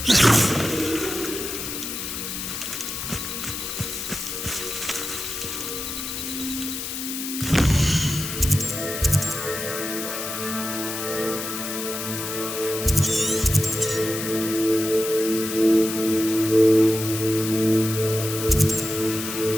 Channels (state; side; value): noise; left; hiss, 5 dB below the sound